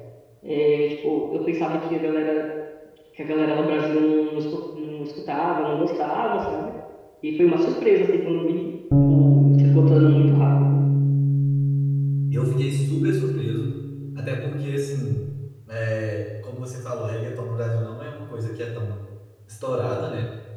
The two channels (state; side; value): identical; both; correlation 1.00